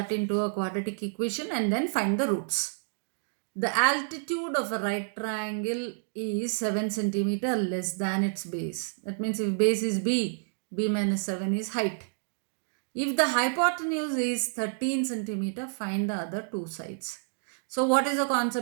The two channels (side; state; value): left; silent; digital silence